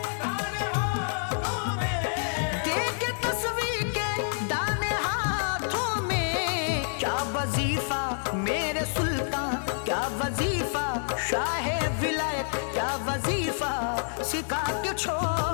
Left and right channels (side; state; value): right; silent; digital silence